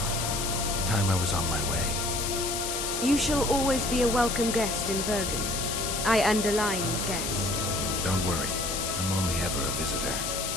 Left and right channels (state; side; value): noise; left; hiss, 2 dB below the sound